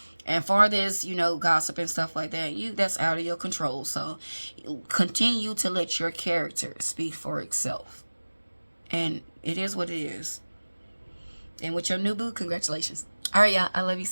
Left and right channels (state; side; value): inverted; both; correlation -1.00